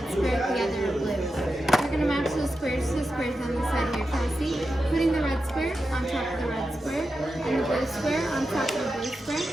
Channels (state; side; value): normal; both; correlation 0.90